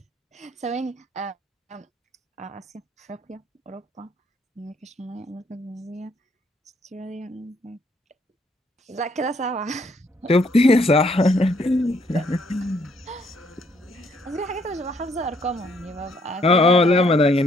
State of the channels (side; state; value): both; normal; correlation 0.69